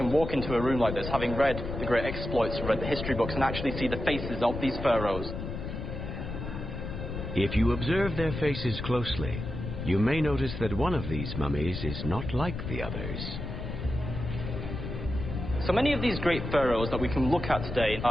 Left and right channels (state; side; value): noise; left; rumble, 6 dB below the sound